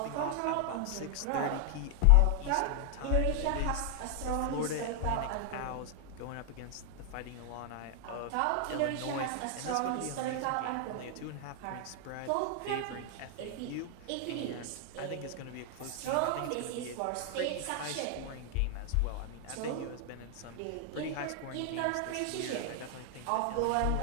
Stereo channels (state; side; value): different; both; correlation 0.00